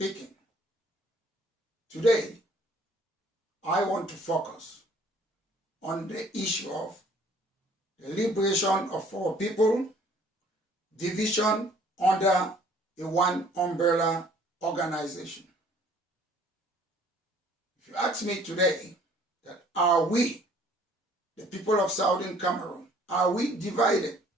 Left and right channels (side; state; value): both; normal; correlation 0.57